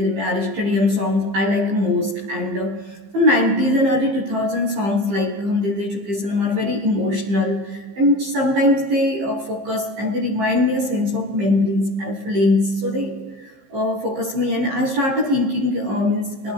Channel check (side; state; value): left; late; 15 ms